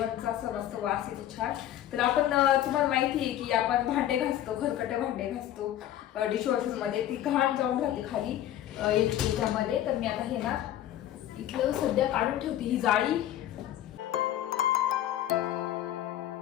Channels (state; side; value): quieter; right; 12.3 dB